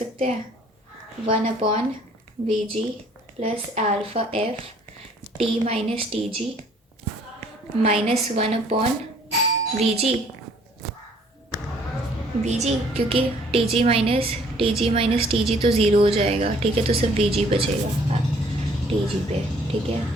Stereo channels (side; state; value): both; normal; correlation 0.59